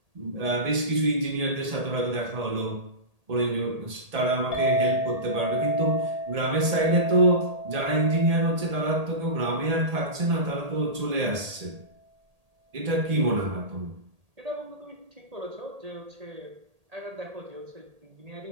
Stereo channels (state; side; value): late; left; 1.8 ms